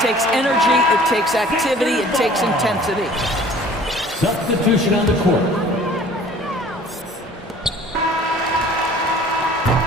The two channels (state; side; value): normal; both; correlation 0.50